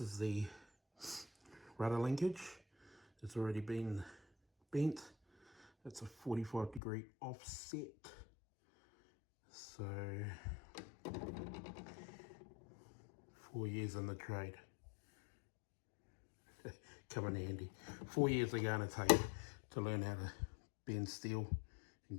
the rudder linkage. It's already been bent. It's a 45-degree offset. So 4 years in the trade. Come in handy. 4 years are going to take to learn how to bend steel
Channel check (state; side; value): drops out; right; at 6.8 s